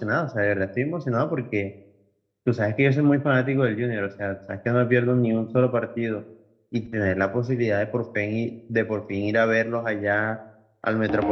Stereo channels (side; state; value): both; identical; correlation 1.00